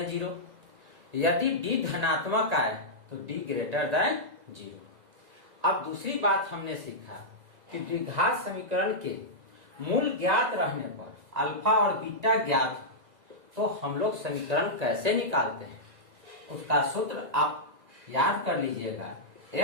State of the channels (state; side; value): late; left; 2.0 ms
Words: 0, यदि डी धनात्मक आए तो डी ग्रेटर देन 0। अब दूसरी बात हमने सीखा कि द्विघात समीकरण के मूल ज्ञात रहने पर अल्फा और बीटा ज्ञात हो तो हम लोग समीकरण कैसे निकालते हैं। उसका सूत्र आप याद कर लीजिएगा,